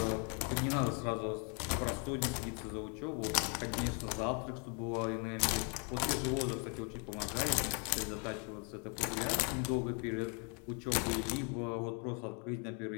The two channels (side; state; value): right; quieter; 37.4 dB